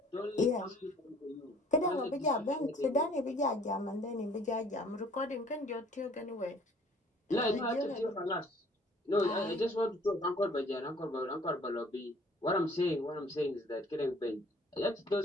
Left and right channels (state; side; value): normal; both; correlation 0.56